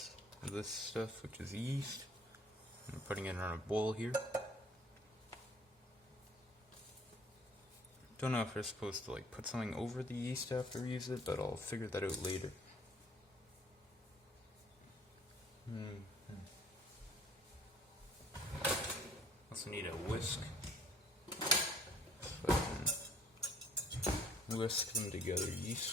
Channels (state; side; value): normal; both; correlation 0.57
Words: of this stuff, which is yeast. I'm putting it on a bowl here. Don't know if we're supposed to like put something over the yeast after we use it, but I'll figure that out later. Also need a whisk. So I can whisk them together